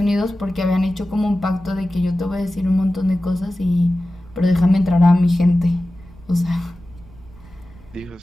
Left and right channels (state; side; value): noise; right; rumble, 23 dB below the sound